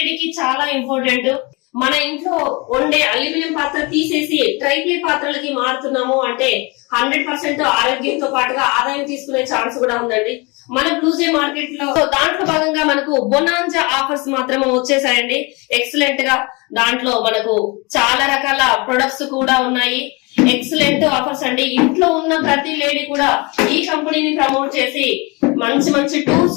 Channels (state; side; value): quieter; right; 27.6 dB